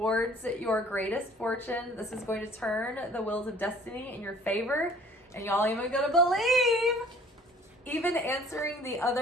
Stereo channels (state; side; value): normal; both; correlation 0.54